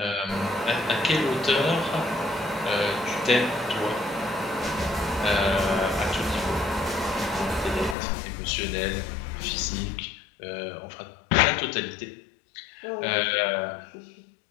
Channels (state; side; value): drops out; right; at 8.0 s